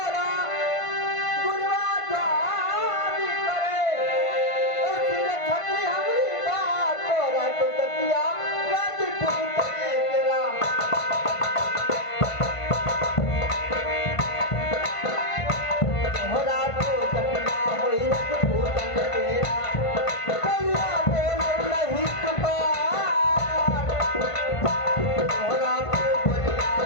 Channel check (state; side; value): late; right; 1.5 ms